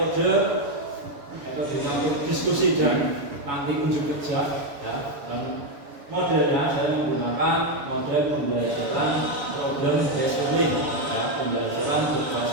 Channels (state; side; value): late; left; 6.9 ms